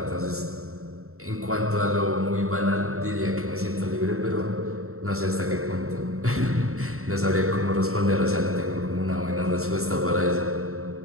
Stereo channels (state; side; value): late; left; 0.63 ms